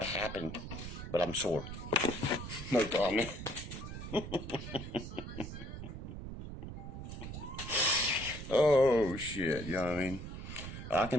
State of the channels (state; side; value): noise; right; rumble, 8 dB below the sound